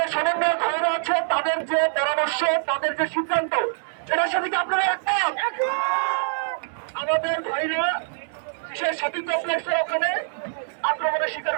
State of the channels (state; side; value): silent; left; 62 dB below the other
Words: সমন্বয় ভাইরা আছে তাদের যে পরামর্শ, তাদের যে সিদ্ধান্ত, এটার সাথে কি আপনারা একমত? আমাদের ভাইরা বিশেষ সতীর্থ কমপ্লেক্সের ওখানে আক্রমণের শিকার